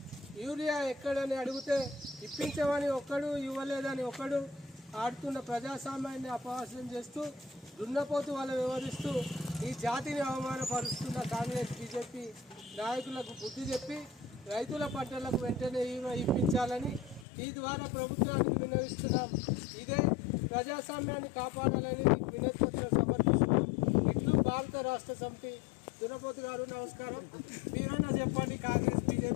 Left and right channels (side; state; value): right; drops out; at 17.2 s